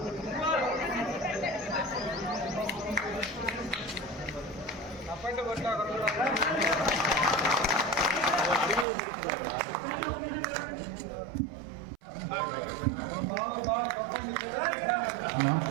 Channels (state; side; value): drops out; left; at 8.8 s